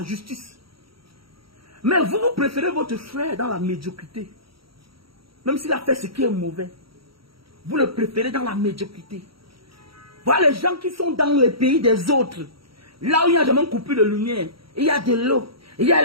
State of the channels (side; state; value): left; late; 0.75 ms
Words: justice. Mais vous préférez votre frère dans la médiocrité. Même s'il a fait ce qui est mauvais. Vous le préférez dans la médiocrité. Voilà les gens qui sont dans les pays des autres. Là où il n'y a jamais coupé de lumière. Il y a de l'eau. Il y a